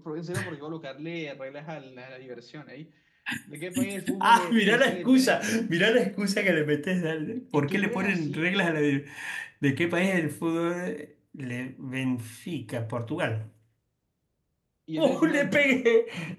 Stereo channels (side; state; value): both; identical; correlation 1.00